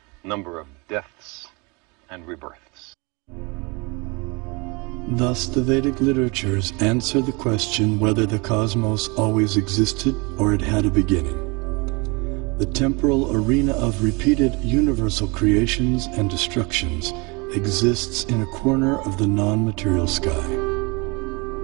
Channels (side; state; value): left; quieter; 28.4 dB